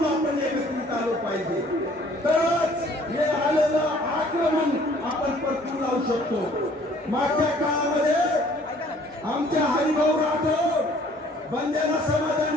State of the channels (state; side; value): normal; both; correlation 0.57